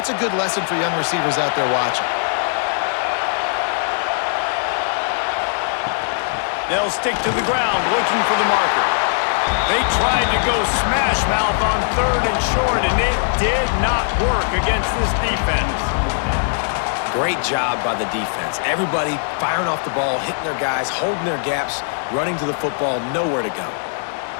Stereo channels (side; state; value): right; silent; 60 dB below the other